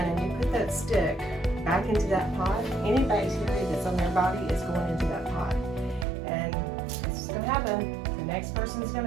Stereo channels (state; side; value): drops out; left; at 6.1 s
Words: you put that stick back into that pot, any bacteria that's on their body is going into that pot. And this is going to happen. The next person is going